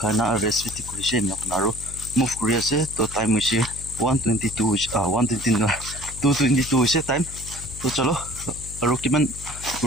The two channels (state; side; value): noise; left; hum, 13 dB below the sound